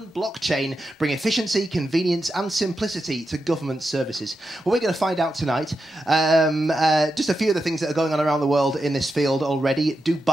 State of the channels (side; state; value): both; normal; correlation 0.88